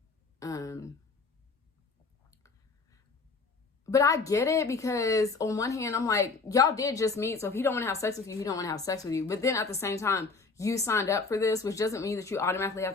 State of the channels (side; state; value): right; quieter; 4.3 dB